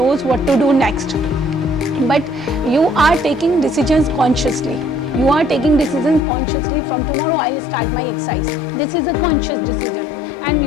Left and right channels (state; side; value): drops out; right; at 6.2 s